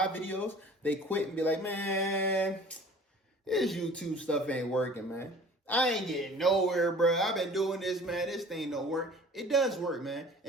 videos. They quit and be like, man, this YouTube stuff ain't working, man. I ain't getting nowhere, bro. I've been doing this, man. This thing don't work. It does work, man.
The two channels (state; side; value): normal; both; correlation 0.47